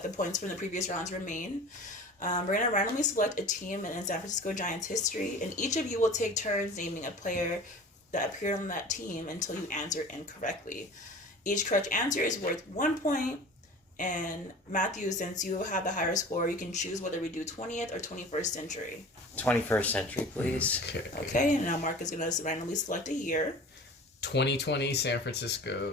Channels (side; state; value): both; normal; correlation 0.39